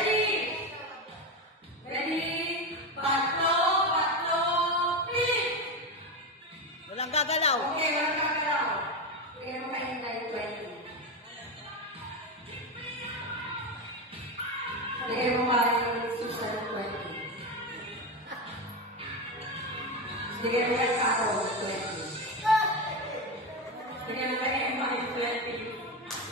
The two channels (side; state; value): both; normal; correlation 0.15